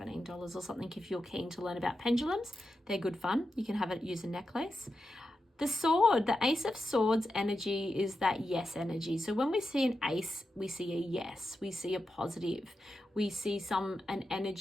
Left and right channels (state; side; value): normal; both; correlation 0.89